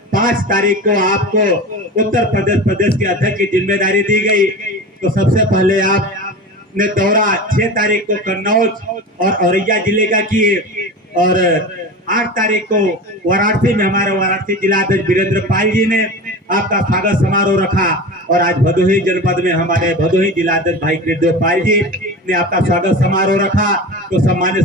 5 तारीख को आपको उत्तर प्रदेश के अध्यक्ष की जिम्मेदारी दी गई, तो सबसे पहले आपने दौरा 6 तारीख को कन्नौज और औरैया जिले का किए और 8 तारीख को वाराणसी में हमारे वाराणसी जिला अध्यक्ष वीरेंद्र पाल जी ने आपका स्वागत समारोह रखा और आज भदोही जनपद में हमारे भदोही जिला अध्यक्ष भाई कृष्णदेव पाल जी ने आपका स्वागत समारोह रखा। तो सम्मानित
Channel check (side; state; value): both; normal; correlation 0.30